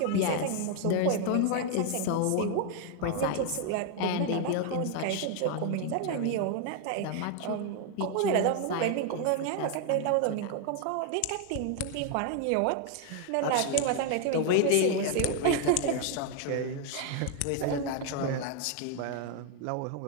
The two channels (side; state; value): both; different; correlation 0.01